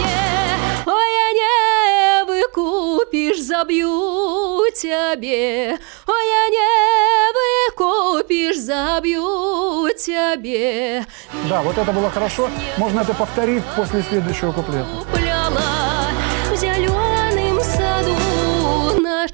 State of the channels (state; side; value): quieter; left; 33.0 dB